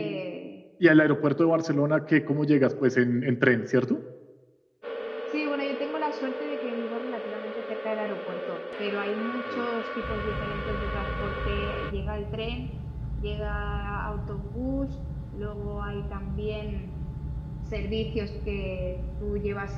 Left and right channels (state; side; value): identical; both; correlation 1.00